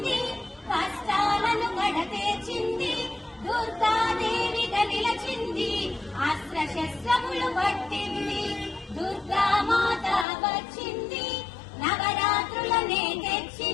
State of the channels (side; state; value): right; drops out; at 10.2 s